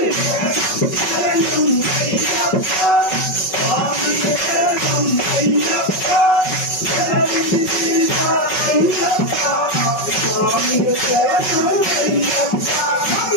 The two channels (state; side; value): late; right; 5.3 ms